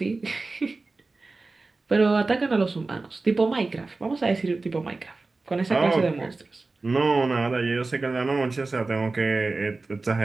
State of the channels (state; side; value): quieter; left; 3.6 dB